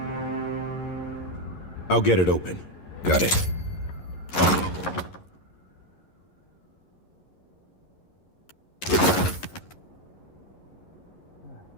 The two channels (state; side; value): late; right; 11 ms